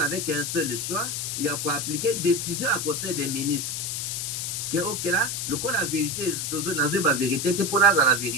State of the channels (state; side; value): noise; left; hiss, 2 dB below the sound